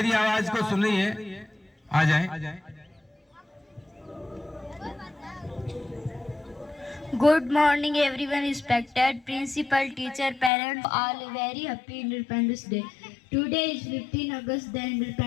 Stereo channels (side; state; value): right; drops out; at 10.5 s